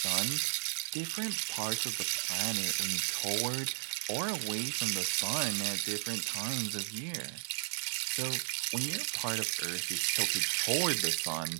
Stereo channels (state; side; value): silent; left; 55 dB below the other